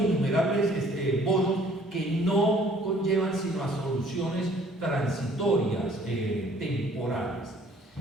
bonos que no conllevan sino a soluciones transitorias, temporales.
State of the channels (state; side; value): normal; both; correlation 0.57